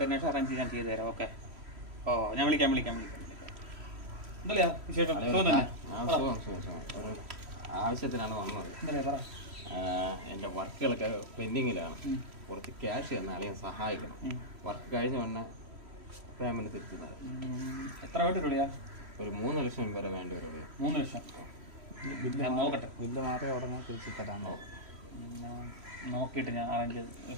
ശേഷം അറേഞ്ച് ഞാൻ ചെയ്തു തരാം. ഓക്കെ. ഓ ഞാൻ വിളിക്കാം. എന്തല്ലേ വിശേഷം? ആവശ്യത്തിനാണ് വന്നത്. എന്റെ വർക്കുകളൊക്കെ പെൻഡിങ്ങിലാണ്. കുറച്ച് ക്യാഷ് തന്നെ അല്ലെങ്കിൽ സഹായിക്കണം. വർക്ക് കഴിഞ്ഞ ഉടനെ പേയ്മെന്റ് തിരിച്ചു തരാം. എത്ര വേണ്ടിട്ടുള്ളിയാ? ഒരു 3 ലക്ഷം വരെ വേണ്ടി വരും. 3 ലക്ഷം ഞാൻ നോക്കട്ടെ. ബില്ല് മാത്രമേ ഉടനെ തിരിച്ചു തരാമോ? നോക്കിയിട്ട് ഞാൻ അറേഞ്ച്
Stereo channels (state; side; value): late; left; 3.1 ms